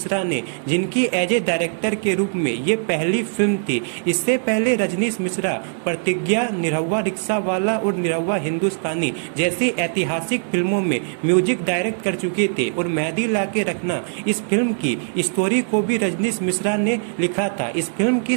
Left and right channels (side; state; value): left; silent; 56 dB below the other